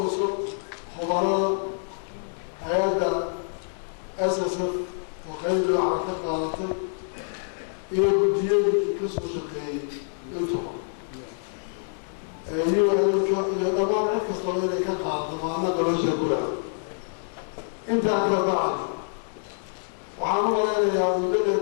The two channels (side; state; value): right; silent; digital silence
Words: خبراء هيدا أساسا وقيد العركة قاعدتي إلى بديان كسر شقيق انتظر أيوة إلى دمار عيد كستا كان قاعدة معنا قبل شكولها انت عكا بعد وحامل أنا يا ولد